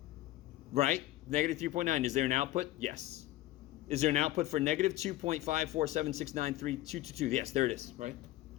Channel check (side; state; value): right; quieter; 16.0 dB